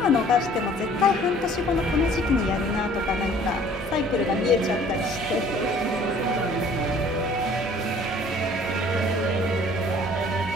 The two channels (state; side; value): normal; both; correlation 0.53